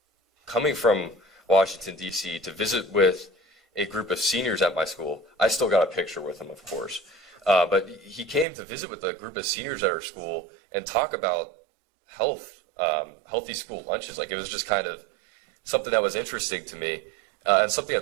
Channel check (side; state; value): left; drops out; at 8.5 s